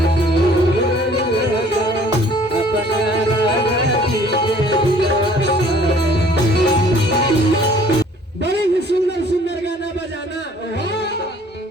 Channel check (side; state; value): both; normal; correlation 0.55